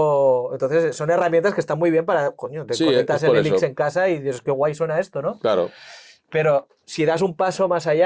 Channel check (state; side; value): identical; both; correlation 1.00